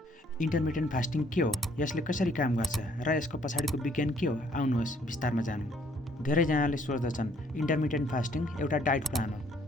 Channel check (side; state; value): both; normal; correlation 0.64